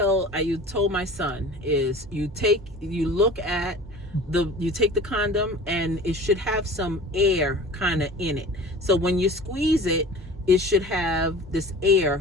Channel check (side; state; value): both; normal; correlation 0.40